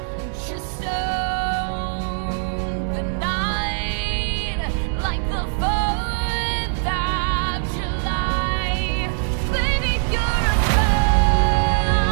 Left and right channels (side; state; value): left; silent; 56 dB below the other